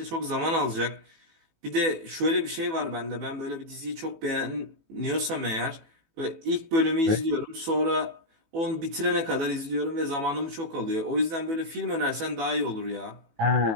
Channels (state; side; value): late; left; 18 ms